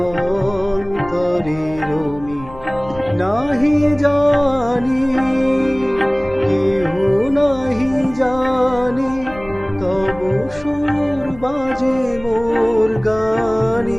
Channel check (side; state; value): left; noise; rumble, 18 dB below the sound